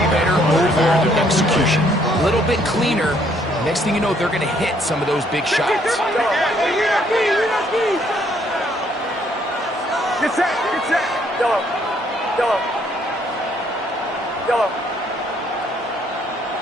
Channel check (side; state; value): both; normal; correlation 0.67